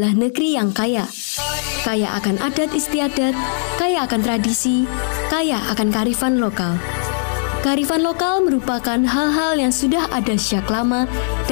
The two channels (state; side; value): silent; right; digital silence